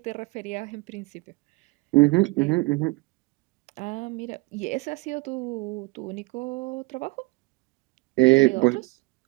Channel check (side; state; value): left; quieter; 24.1 dB